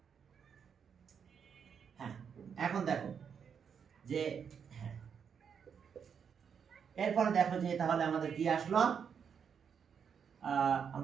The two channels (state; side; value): quieter; left; 7.1 dB